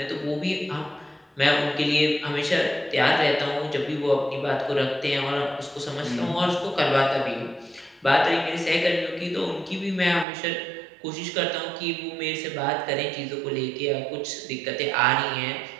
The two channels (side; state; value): left; drops out; at 10.2 s